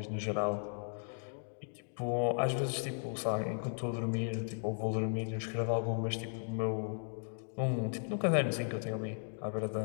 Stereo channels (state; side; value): silent; right; digital silence